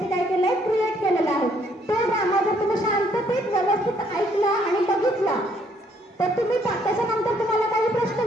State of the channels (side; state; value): both; normal; correlation 0.67